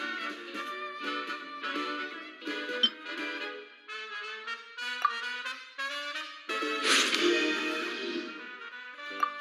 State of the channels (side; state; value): both; identical; correlation 1.00